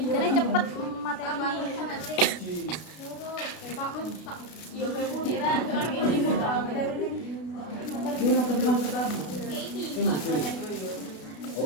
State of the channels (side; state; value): right; late; 32 ms